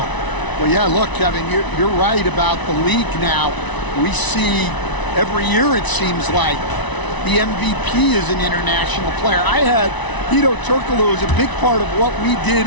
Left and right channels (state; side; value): late; right; 1.0 ms